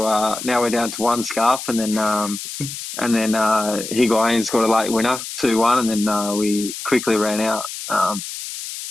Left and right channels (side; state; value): left; noise; hiss, 9 dB below the sound